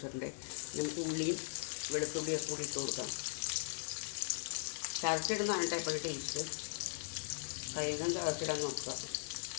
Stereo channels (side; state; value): right; silent; 52 dB below the other